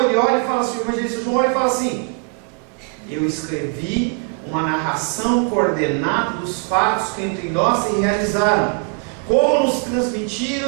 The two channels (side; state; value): left; quieter; 36.0 dB